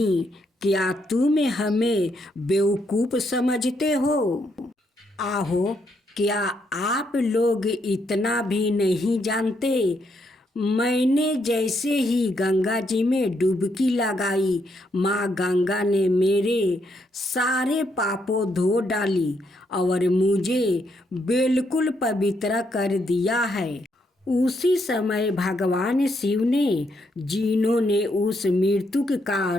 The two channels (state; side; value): normal; both; correlation 0.76